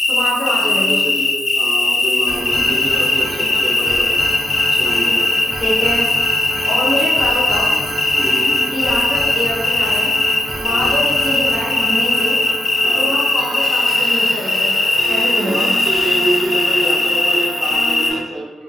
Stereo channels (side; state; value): both; normal; correlation 0.85